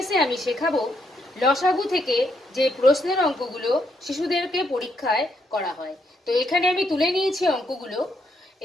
আমি শেখাবো লসাগু থেকে যে প্রশ্নের অঙ্কগুলো শিশুদেরকে পরীক্ষায় করা হয়। তো এখানে আমি তুলে নিয়েছি অঙ্কগুলো।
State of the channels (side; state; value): both; normal; correlation 0.76